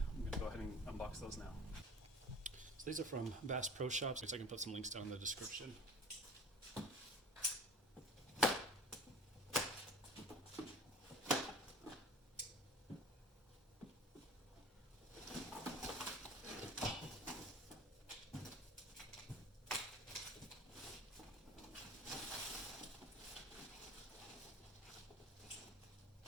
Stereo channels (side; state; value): both; normal; correlation 0.41